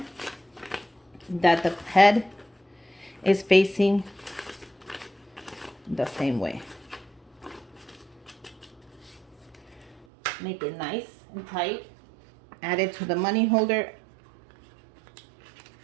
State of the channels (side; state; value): left; drops out; at 10.1 s